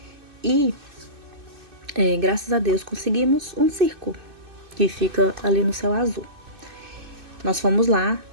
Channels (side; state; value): left; late; 2.6 ms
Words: E, graças a Deus, conseguimos um circo que fica ali no Céu Azul. Nós fomos lá,